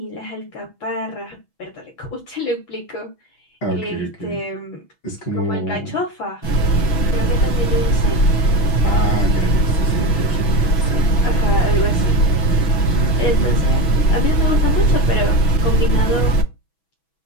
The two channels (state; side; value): late; right; 6.1 ms